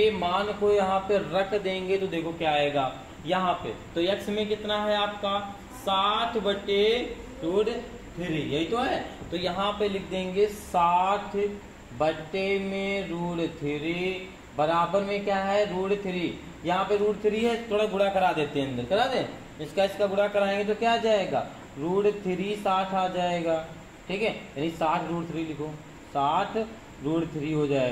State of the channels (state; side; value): identical; both; correlation 1.00